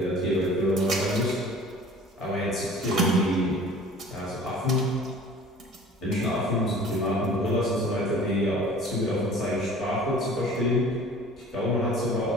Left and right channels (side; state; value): both; normal; correlation 0.46